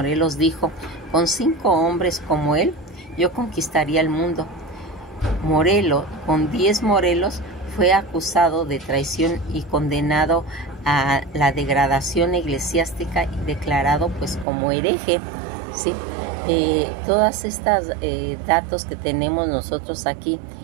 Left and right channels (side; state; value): left; drops out; at 14.5 s